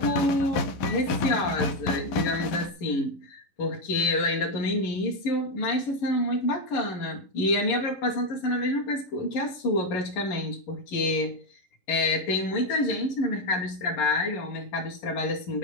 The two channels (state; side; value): late; right; 11 ms